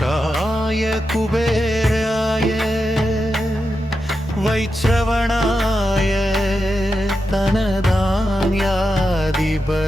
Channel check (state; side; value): normal; both; correlation 0.88